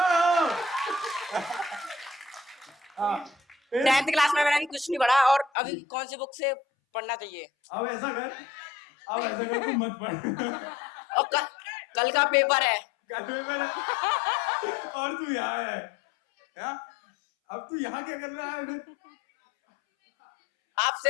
फिर 10th क्लास में मैंने अभी कुछ नहीं पढ़ा और अभी कौन सी बुक से पढ़ना चाहिए अब ऐसा कर तू मत पढ़ और कल का पेपर है। कल पेपर है और तू यहाँ है क्या? अब तू यहाँ क्या कर रहा है फिर?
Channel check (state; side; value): drops out; right; at 5.5 s